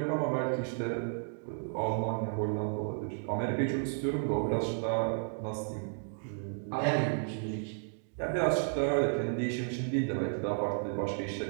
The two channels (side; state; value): left; silent; 56 dB below the other